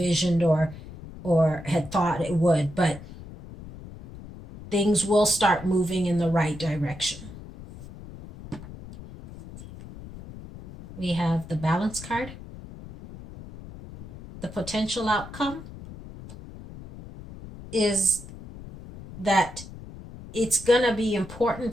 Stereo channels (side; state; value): left; noise; rumble, 15 dB below the sound